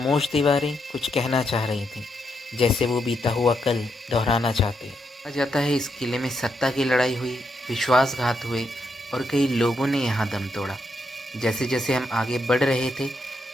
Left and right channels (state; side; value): normal; both; correlation 0.80